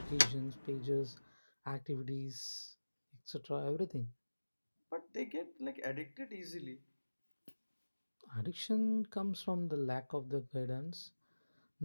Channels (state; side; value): inverted; both; correlation -1.00